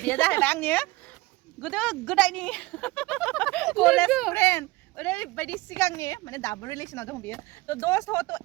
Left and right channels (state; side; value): quieter; left; 20.8 dB